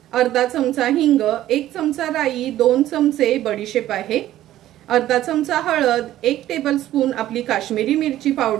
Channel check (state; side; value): quieter; left; 13.6 dB